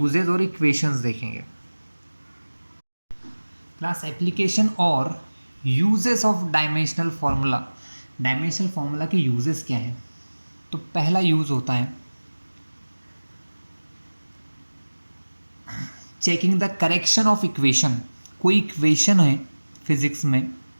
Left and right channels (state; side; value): inverted; both; correlation -1.00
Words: और इक्वेशंस देखेंगे। क्लास एप्लीकेशन और uses of dimensional formula. Dimensional formula के यूजेस क्या हैं? तो पहला यूज होता है checking the correction of equation. कोई इक्वेशन है फिजिक्स में